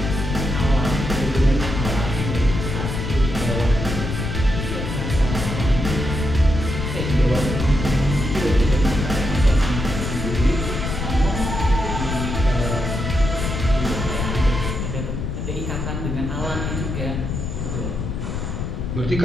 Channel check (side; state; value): left; noise; rumble, 3 dB below the sound